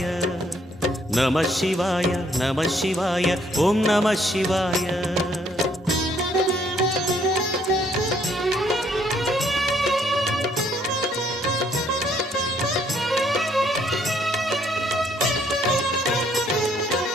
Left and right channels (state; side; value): normal; both; correlation 0.67